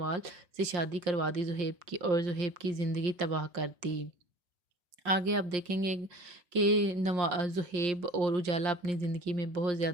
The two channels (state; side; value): late; left; 5.6 ms